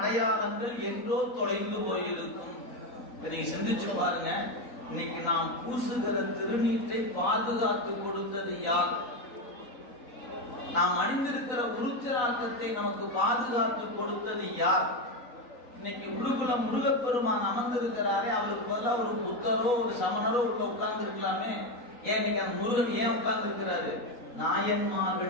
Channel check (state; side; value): late; right; 4.1 ms